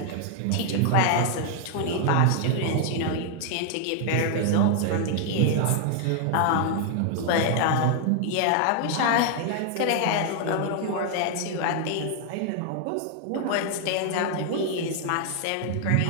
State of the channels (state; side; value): different; both; correlation 0.00